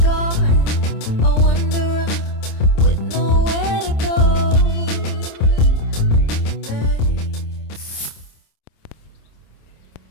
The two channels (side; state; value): right; late; 27 ms